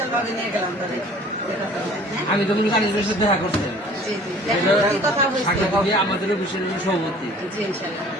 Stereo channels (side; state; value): both; normal; correlation 0.50